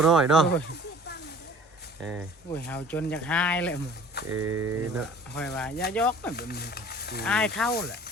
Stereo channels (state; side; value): normal; both; correlation 0.48